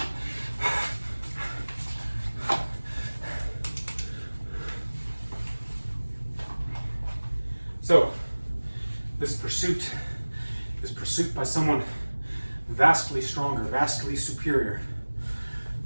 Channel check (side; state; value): both; inverted; correlation -1.00